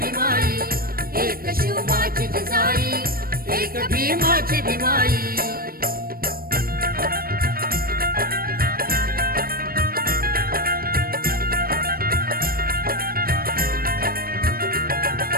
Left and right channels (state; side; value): late; left; 0.43 ms